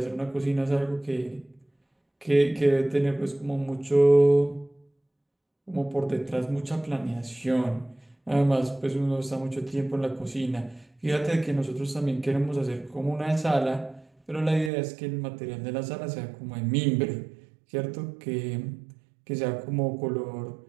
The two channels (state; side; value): drops out; left; at 14.7 s